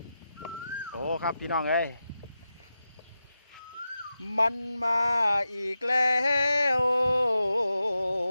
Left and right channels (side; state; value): both; inverted; correlation -0.91